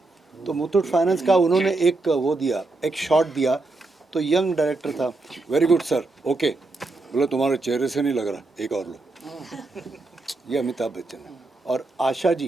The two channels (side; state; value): left; quieter; 3.2 dB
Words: तो मुथूट फाइनेंस का उन्होंने एक वो दिया, एक शॉट दिया, तो यंग डायरेक्टर था, वेरी गुड सर, ओके, बोला तुम्हारे चेहरे से नहीं लग रहा, एक और लो। ये अमिताभ बच्चन है। और आशा